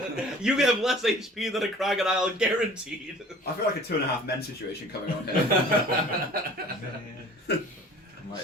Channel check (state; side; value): normal; both; correlation 0.47